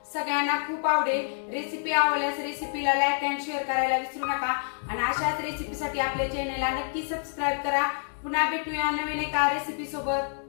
सगळ्यांना खूप आवडेल। रेसिपी आवडल्यास रेसिपीला लाईक अँड शेअर करायला विसरू नका आणि अशाच रेसिपीसाठी आपल्या चॅनेलला नक्की सबस्क्राईब करा। पुन्हा भेटूया नवीन एका रेसिपी सोबत।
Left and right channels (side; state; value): right; silent; digital silence